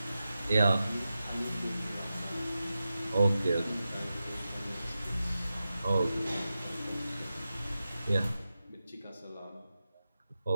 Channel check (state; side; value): inverted; both; correlation -0.92